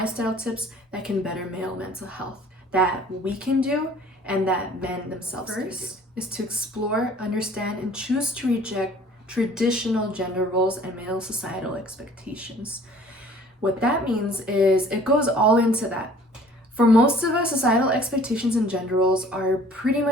tips that can better male mental health, that we can do and that men themselves can do. First is to explore, understand, and choose to reject traditional gender roles and male societal expectations. What that means is it goes all into that. For most of us, societal expectations and gender roles are pretty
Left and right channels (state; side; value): normal; both; correlation 0.52